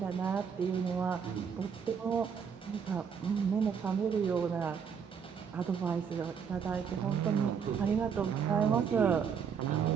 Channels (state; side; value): quieter; left; 6.9 dB